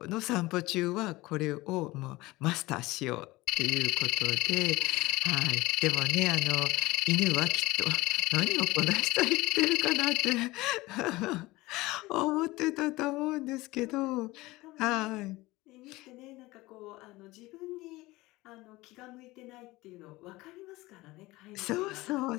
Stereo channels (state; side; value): quieter; right; 20.1 dB